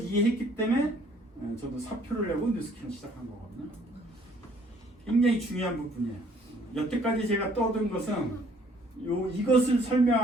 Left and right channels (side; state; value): both; normal; correlation 0.60